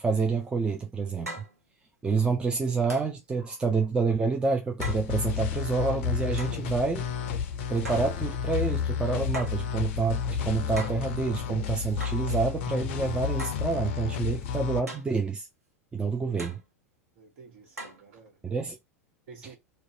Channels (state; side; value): normal; both; correlation 0.50